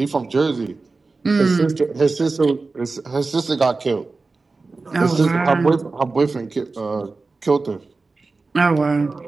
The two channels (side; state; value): left; quieter; 3.8 dB